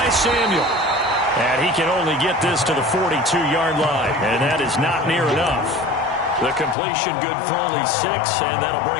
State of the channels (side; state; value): right; drops out; at 6.8 s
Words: Samuel. And he can only get this to the 42-yard line, and that is not near enough. The completion good for only 6, and that'll